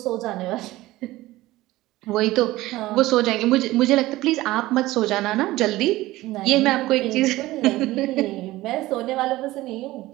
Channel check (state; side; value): quieter; left; 17.6 dB